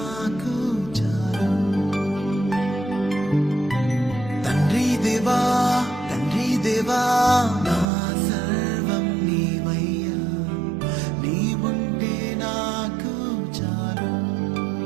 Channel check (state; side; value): drops out; left; at 7.9 s